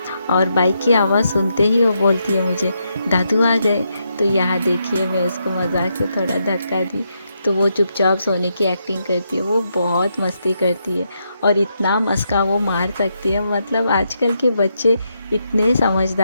और बाइक की आवाज़ सुनते ही वो बोलती है मुझे दादू आ गए। तो यहाँ देखिए मैं उसको मजाक से थोड़ा धक्का दी, तो वो चुपचाप सोने की एक्टिंग करती है। वो बहुत मस्ती करती है और इतना मस्का वो मार सकती है, मतलब आजकल के बच्चे इतने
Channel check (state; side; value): inverted; both; correlation -0.81